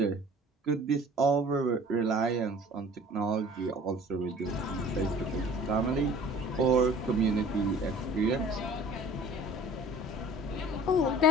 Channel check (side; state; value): both; normal; correlation 0.48